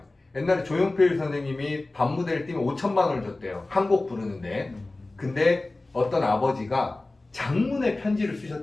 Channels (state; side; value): quieter; right; 3.0 dB